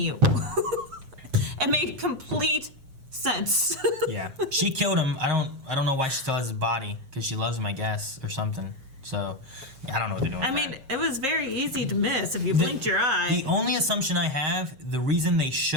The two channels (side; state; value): left; late; 7.6 ms